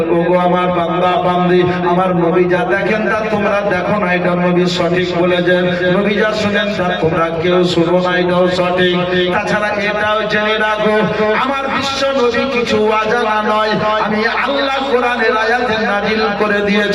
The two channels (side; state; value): left; noise; hum, 24 dB below the sound